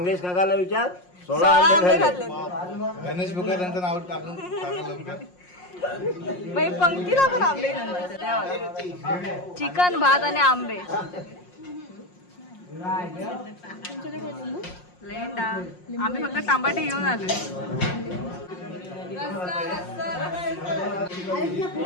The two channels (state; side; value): late; right; 5.6 ms